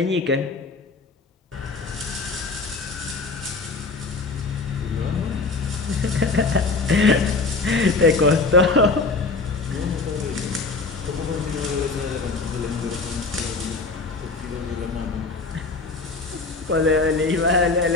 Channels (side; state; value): right; quieter; 3.8 dB